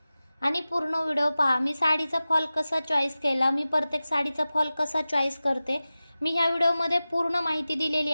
आणि पूर्ण व्हिडिओ पहा। मी साडीचा फॉल कसा चॉईस केला, मी प्रत्येक साडीचा फॉल कसा चॉईस करते, मी ह्या व्हिडिओमध्ये पूर्ण माहिती दिलेली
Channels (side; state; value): both; inverted; correlation -0.96